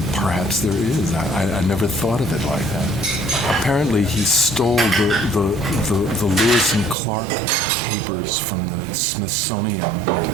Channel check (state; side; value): drops out; left; at 7.0 s